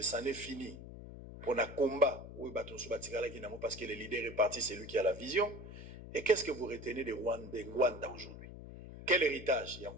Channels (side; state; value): left; noise; hum, 13 dB below the sound